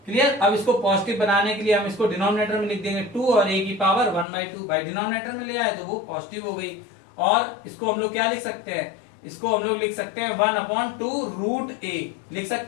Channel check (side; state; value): right; drops out; at 4.2 s